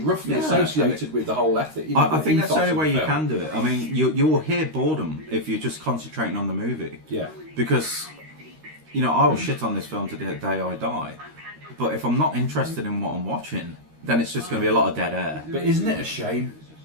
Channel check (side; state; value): left; late; 13 ms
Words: associated with the whole ethic. You know, I think that's the only way you film. can do it. I mean, you'll hear boredom if you're just concentrating on the movie. Yeah. Because, you know, I will shit on this film to the day I die, but if I'm not interested in what I'm watching, then it's just going to be a lot of dead air. But isn't it a shame?